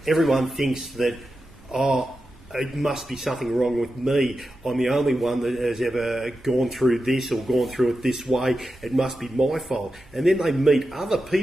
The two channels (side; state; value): both; normal; correlation 0.90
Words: everyone thinks that, it must be something wrong with me. I'm the only one that has ever gone through this or gone through it this way. It must be my fault. And then they meet other